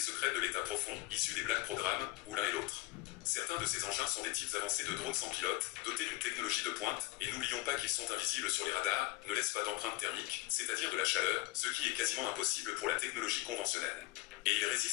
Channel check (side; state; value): right; quieter; 19.0 dB